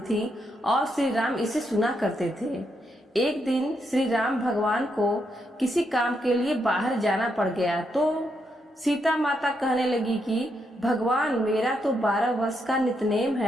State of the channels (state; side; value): normal; both; correlation 0.80